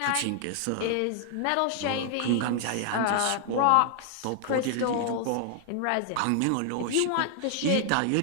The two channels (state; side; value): different; both; correlation 0.00